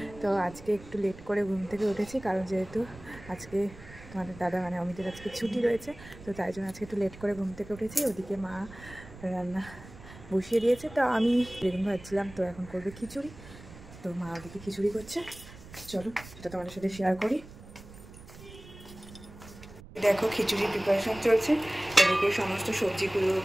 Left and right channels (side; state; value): right; noise; rumble, 17 dB below the sound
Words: তো আজকে একটু লেট করে ঘুম থেকে উঠেছি, কারণ যেহেতু আজকে তোমাদের দাদা মানে অমিতের আজকে ছুটি রয়েছে, তো তাই জন্য আজকে একটু লেট করে ঘুম থেকে উঠেছি। ওদিকে মা রান্না বসিয়ে দিয়েছে, তো আমি বেগুন ভাজছিলাম, তো এখন করবে খিচুড়ি। তো মা ওদিকে খিচুড়ি করছে, চলো সেটা তোমাদের সাথে শেয়ার করি। দেখো খিচুড়ির প্রিপারেশন চলছে। এদিকে সমস্ত সবজিগুলো